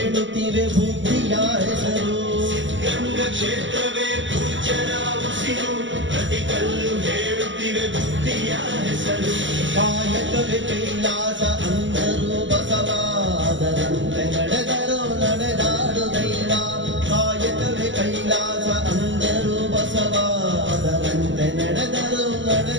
ಬುದ್ಧಿಯ ಹೆಸರು ಗಂಗ ಕ್ಷೇತ್ರವೇ ಪೂಜ್ಯರ ಉಸಿರು ಪ್ರತಿ ಕಲ್ಲು ಹೇಳುತ್ತಿವೆ ಬುದ್ಧಿಯ ಹೆಸರು ಕಾಯಕವೇ ಕೈಲಾಸ ಅಂದರು ಬಸವಾದರಂತೆ ನಡೆದರು ನಡೆದಾಡು ದೈವ ಕಾಯಕವೇ ಕೈಲಾಸ ಅಂದರು ಬಸವಾದರಂತೆ ನಡೆದರು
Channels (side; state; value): left; late; 0.54 ms